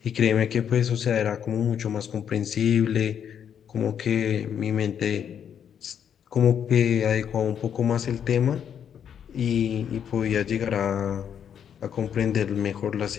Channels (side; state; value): right; quieter; 8.5 dB